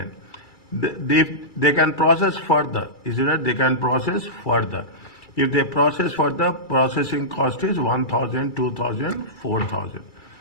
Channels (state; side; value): late; right; 2.3 ms